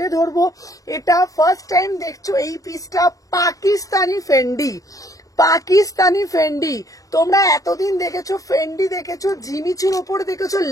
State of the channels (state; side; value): late; right; 0.17 ms